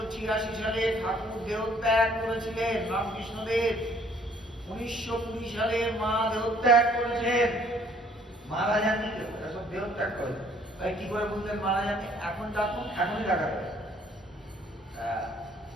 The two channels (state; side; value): normal; both; correlation 0.61